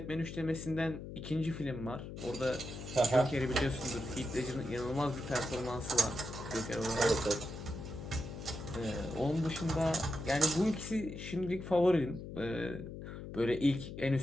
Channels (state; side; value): noise; left; hum, 9 dB below the sound